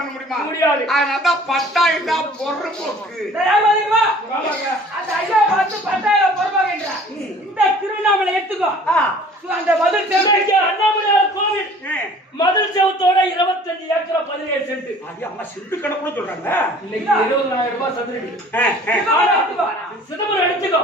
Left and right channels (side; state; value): both; normal; correlation 0.49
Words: முடியுமா முடியாது அதனாலதான் பட்டா இல்ல பொறுப்போக்கு அந்த ஐயா பார்த்து பட்டா பொறுப்பாகின்றார் இந்த எடுத்துக்கோ அந்த மதுள் செவத்துக்கு அண்ணாமலையார் கோவில் மதுள் செவத்தோட 25 ஏக்கர் 17 சென்ட். அது அம்மா சென்ட் கணக்குன்னு சொல்றாங்க. இன்னைக்கு 20,000 ரூபாய் சதுரடி. சிதம்பரம் எடுத்துக்கோ